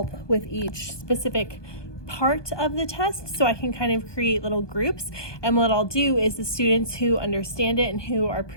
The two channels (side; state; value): right; late; 1.2 ms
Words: with each specific part of the test, so I can kind of create little groups. And what I'll do is the students who understand it and who are